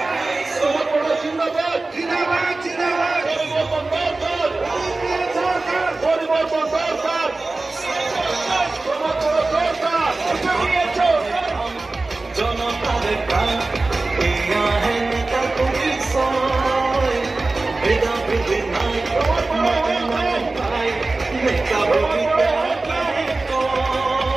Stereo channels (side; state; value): left; quieter; 3.3 dB